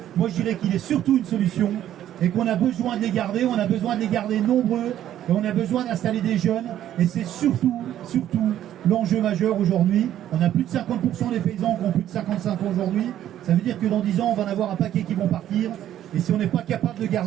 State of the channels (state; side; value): quieter; left; 11.7 dB